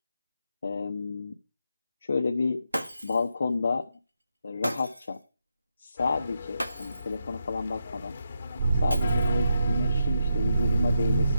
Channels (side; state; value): both; inverted; correlation -0.82